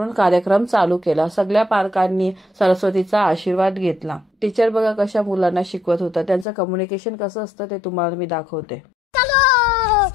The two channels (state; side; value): drops out; right; at 6.5 s